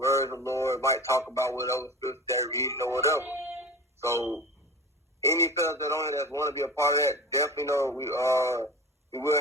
of the Lord, might talk about whatever scripture they're reading or whatever. So, any fellas that on here that want to be a part of that, definitely know we will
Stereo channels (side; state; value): both; normal; correlation 0.35